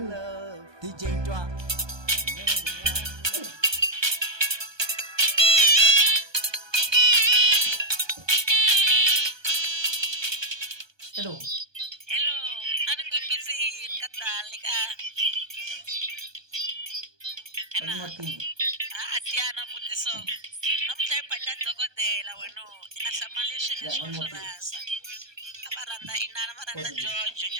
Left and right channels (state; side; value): late; left; 1.2 ms